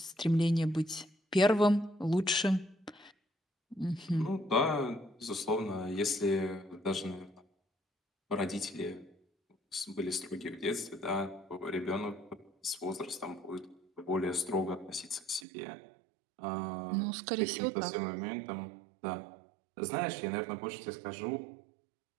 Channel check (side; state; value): left; drops out; at 15.5 s